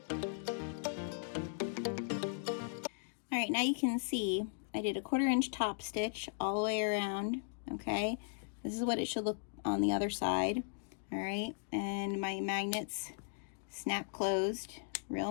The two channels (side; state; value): right; silent; digital silence